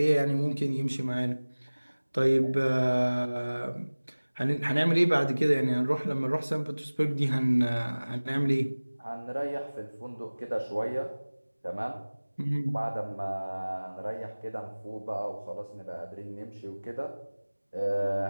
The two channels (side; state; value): both; inverted; correlation -1.00